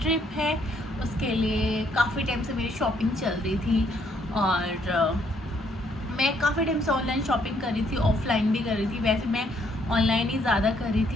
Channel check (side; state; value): both; normal; correlation 0.69